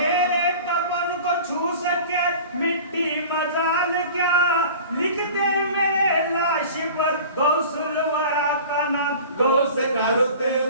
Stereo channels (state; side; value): inverted; both; correlation -0.40